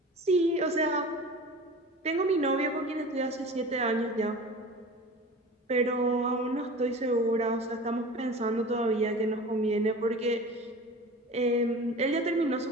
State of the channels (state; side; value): normal; both; correlation 0.37